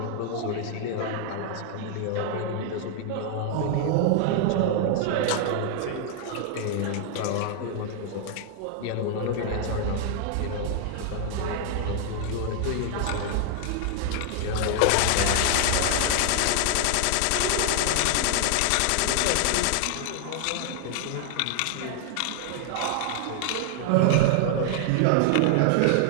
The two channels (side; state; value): both; different; correlation 0.00